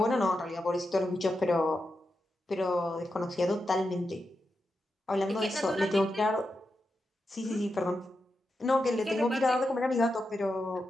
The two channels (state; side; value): normal; both; correlation 0.88